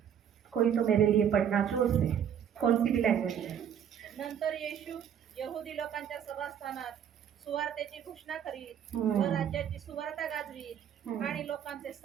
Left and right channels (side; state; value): left; quieter; 8.8 dB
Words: कोई तो मेरे लिए पढ़ना जोर से, कौन सी भी लैंग्वेज है। नंतर येशू यहुदी लोकांच्या सभास्थानात सुवार्तेची घोषणा करीत व राज्याची सुवार्ता गाजवीत आणि लोकांचे